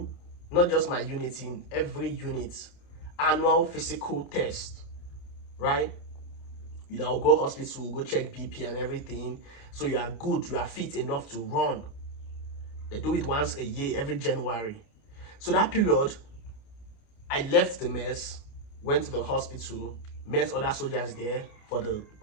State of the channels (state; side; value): late; right; 28 ms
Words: not just my unit, in every unit, annual physical test, right? You know, go hospital, go check BP and everything, so you are good, you are fit enough to run. They do it once a year, every January. So that period, I left the mess, went to the hospital, met other soldiers there for the